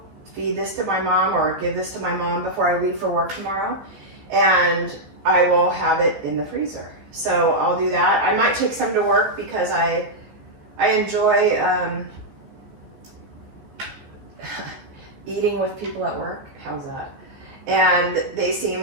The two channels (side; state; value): left; late; 14 ms